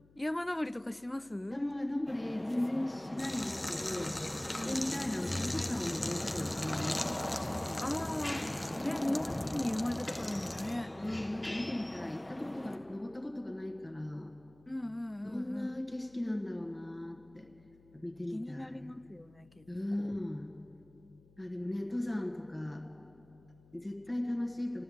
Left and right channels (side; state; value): left; noise; hum, 27 dB below the sound